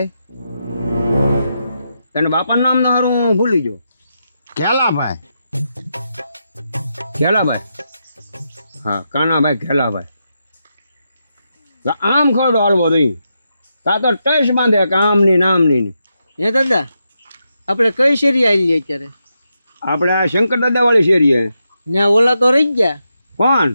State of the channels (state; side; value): inverted; both; correlation -0.84